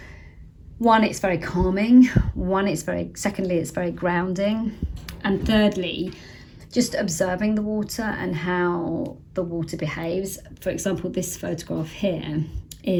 one, it's very calming. Secondly, it's very grounding. And thirdly, just observing the water and how the water behaves. For example, this photograph here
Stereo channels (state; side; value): identical; both; correlation 1.00